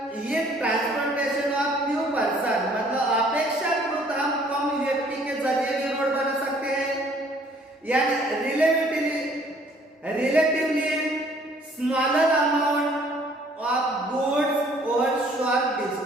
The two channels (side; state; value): both; normal; correlation 0.59